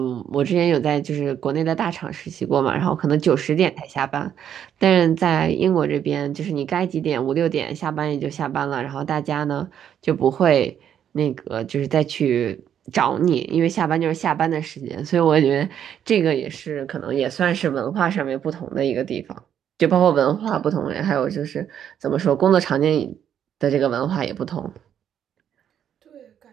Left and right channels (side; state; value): left; quieter; 9.3 dB